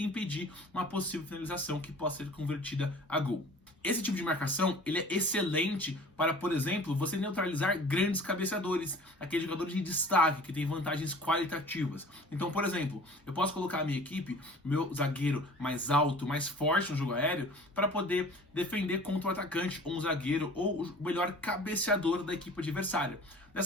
uma possível finalização que possa ser convertida a gol. Esse tipo de marcação ele é excelente para, por exemplo, você neutralizar grandes cabeceadores, aqueles jogadores de destaque que têm vantagens qualitativas. Então, por exemplo, eu posso colocar a minha equipe, meu zagueiro mais alto, mais forte no jogo aéreo, para poder defender contra o atacante, ou um zagueiro, ou o melhor cabeceador da equipe adversária.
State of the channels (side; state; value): both; normal; correlation 0.45